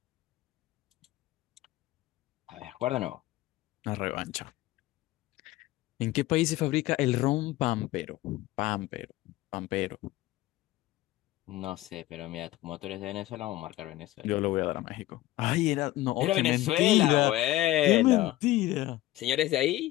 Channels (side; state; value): right; quieter; 16.3 dB